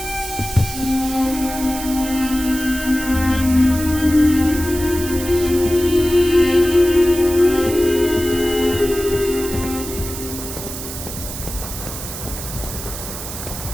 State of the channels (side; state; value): right; noise; hiss, 9 dB below the sound